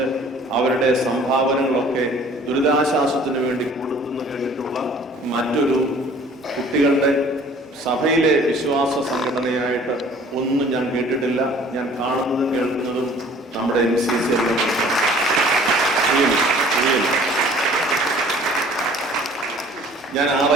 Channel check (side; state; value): both; normal; correlation 0.52